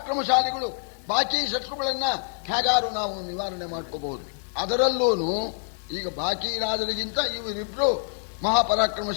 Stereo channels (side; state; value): right; silent; digital silence